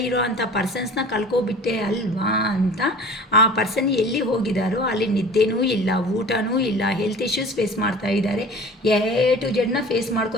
ಇರೋ ಅಂಥ ಪರ್ಸನ್ಸ್ನ ಕಳ್ಕೊಬಿಟ್ಟೆ ಅಲ್ವಾ ಅಂತ ಆ ಪರ್ಸನ್ ಎಲ್ಲಿ ಹೋಗಿದ್ದಾರೋ ಅಲ್ಲಿ ನಿದ್ದೆನೂ ಇಲ್ಲ, ಊಟನೂ ಇಲ್ಲ, ಹೆಲ್ತ್ ಇಶ್ಯೂಸ್ ಫೇಸ್ ಮಾಡ್ತಾ ಇದ್ದಾರೆ, ಟು ಜಡ್ನ ಫೇಸ್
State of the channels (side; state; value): both; normal; correlation 0.43